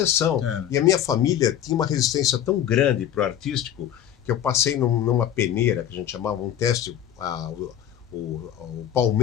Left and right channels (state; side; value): quieter; right; 10.4 dB